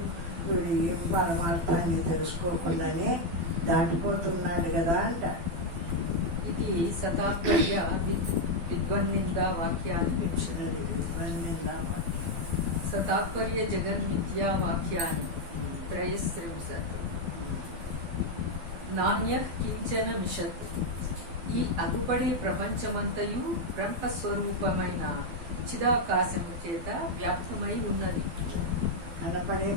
వీడు ఏం పరమార్థాన్ని తెలుసుకోకుండానే దాటిపోతున్నాడు కదా అంట. ఇది సతాత్పర్య విద్వన్నిందా వాక్యాన్ని వింశతి. సతాత్పర్య జగన్మిథ్యా వాక్యాన్ని 33. నాణ్య కించన మిషత్. ఈ అగుపడే ప్రపంచమంతయు బ్రహ్మస్వరూపమైన చిదాకాశము చేత వ్యాప్తమై ఉన్నది. కనపడే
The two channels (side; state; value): left; late; 12 ms